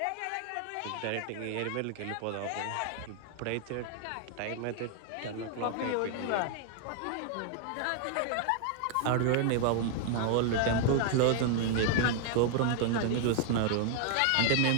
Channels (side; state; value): both; different; correlation 0.00